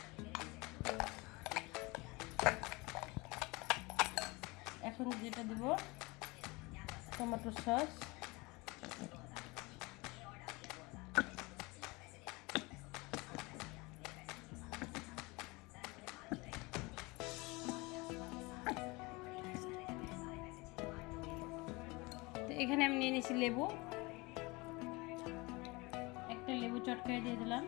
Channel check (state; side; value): quieter; right; 24.8 dB